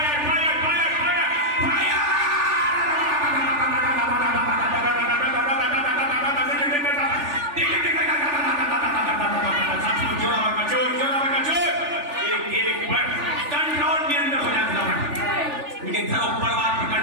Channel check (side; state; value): left; late; 3.4 ms